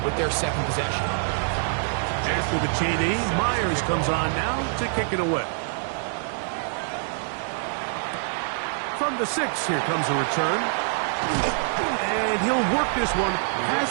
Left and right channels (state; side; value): silent; left; digital silence